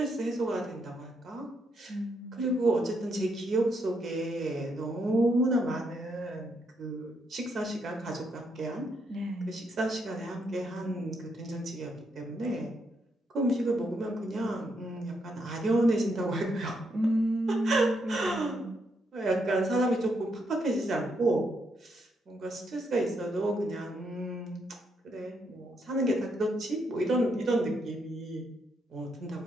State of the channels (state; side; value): normal; both; correlation 0.77